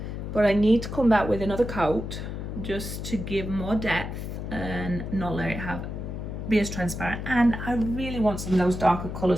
but I need to come back with another coat just to give more depth and not let it be as transparent. And I really want some of those darker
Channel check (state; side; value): noise; left; hum, 6 dB below the sound